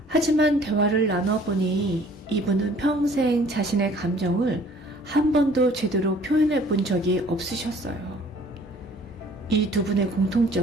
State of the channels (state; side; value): normal; both; correlation 0.54